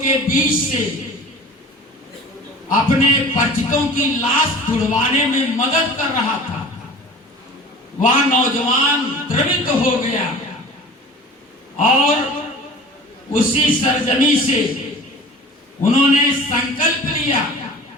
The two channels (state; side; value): normal; both; correlation 0.41